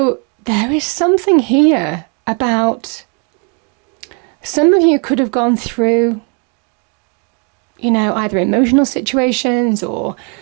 there is something here about some of you could have gone through, either emotional situations or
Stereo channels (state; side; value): quieter; left; 36.1 dB